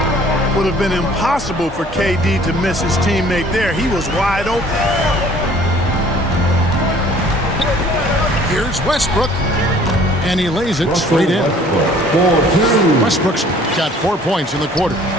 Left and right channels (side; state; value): both; normal; correlation 0.54